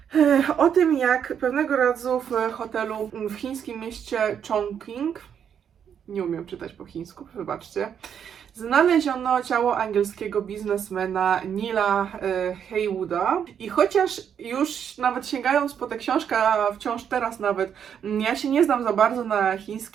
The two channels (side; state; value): left; quieter; 8.2 dB